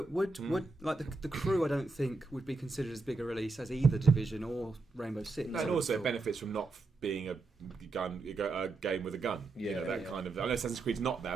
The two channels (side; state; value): left; quieter; 3.5 dB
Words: would like the Crew? I don't think would be considered as big a release as either Division or Rainbow Six. And also it benefits from not being a game with a gun. You know, that Yeah. kind of. I know Assassin's Creed's not